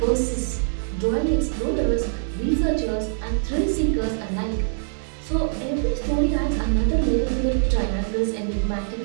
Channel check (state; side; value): silent; left; digital silence